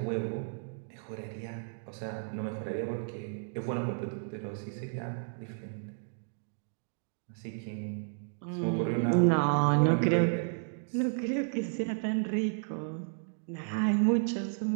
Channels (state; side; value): silent; left; digital silence